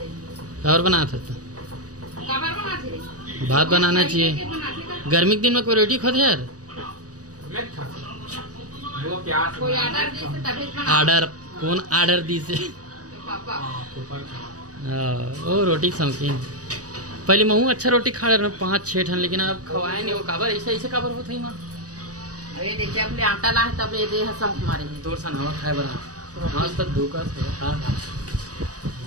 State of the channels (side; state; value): left; late; 0.67 ms